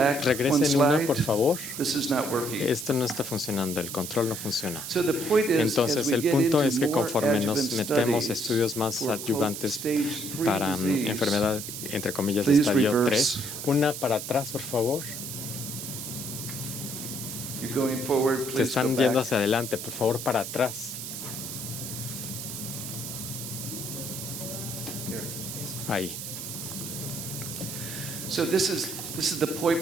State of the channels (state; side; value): noise; right; hiss, 7 dB below the sound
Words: una, por favor. Esto no está funcionando, el control no funciona. Entonces, el punto es que conforme nos metemos estudios más adyuvantes para enfermedad, entre comillas, de estadio 3, una para atrás, por favor. Te están yendo hacia adelante, por favor, para atrás. Ahí. Este